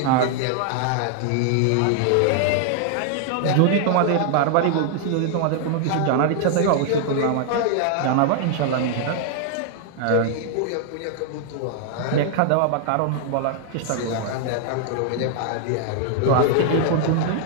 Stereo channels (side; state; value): both; different; correlation 0.00